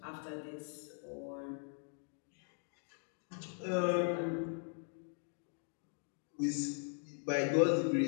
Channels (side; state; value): right; silent; 51 dB below the other